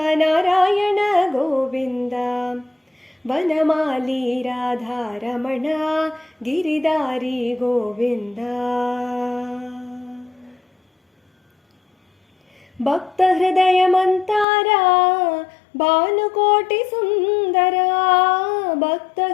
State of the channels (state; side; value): drops out; right; at 14.5 s